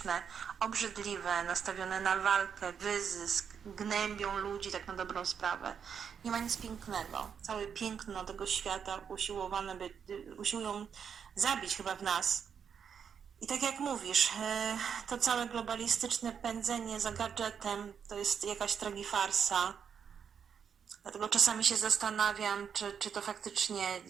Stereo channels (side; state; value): left; quieter; 7.3 dB